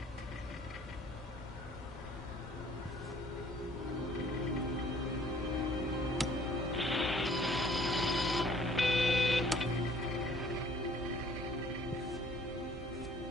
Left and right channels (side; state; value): both; normal; correlation 0.56